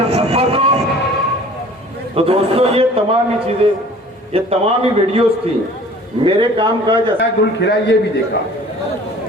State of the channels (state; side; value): normal; both; correlation 0.48